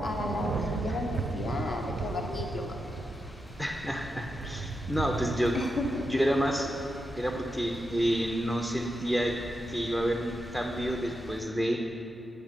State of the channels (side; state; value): both; normal; correlation 0.86